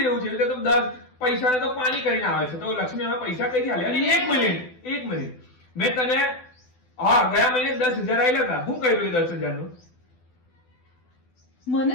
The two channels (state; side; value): late; right; 12 ms